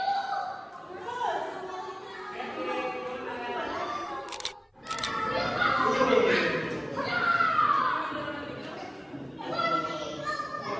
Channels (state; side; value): identical; both; correlation 1.00